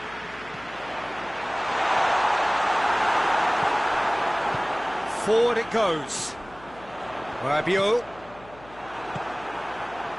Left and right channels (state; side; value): noise; left; hum, 22 dB below the sound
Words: Forward it goes. Rabiot.